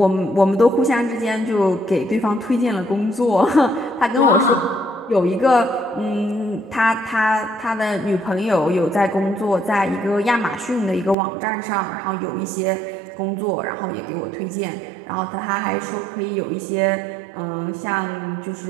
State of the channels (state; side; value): drops out; left; at 11.2 s